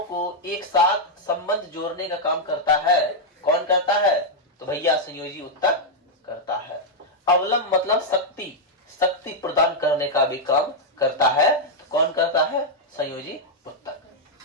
को एक साथ संबंध जोड़ने का काम करता है। कौन करता है? तो भैया संयोजी उत्तक करता है। अवलंब मतलब शक्ति, शक्ति प्रदान करने का भी काम करता है। तो कौन करता है? संयोजी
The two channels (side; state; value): both; normal; correlation -0.03